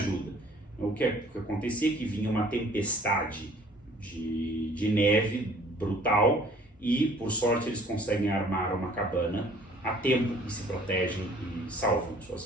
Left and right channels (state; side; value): normal; both; correlation 0.55